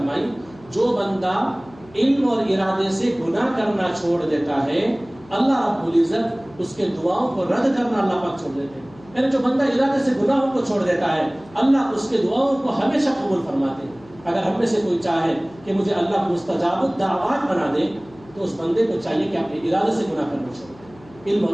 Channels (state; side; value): noise; left; hum, 24 dB below the sound